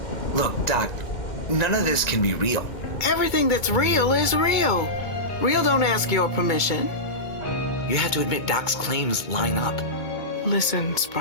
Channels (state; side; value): late; right; 2.2 ms